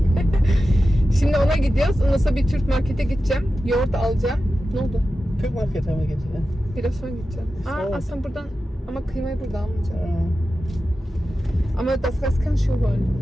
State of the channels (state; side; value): normal; both; correlation 0.93